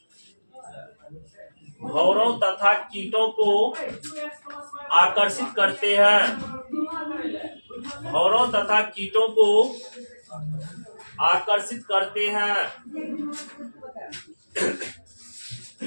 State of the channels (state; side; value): inverted; both; correlation -1.00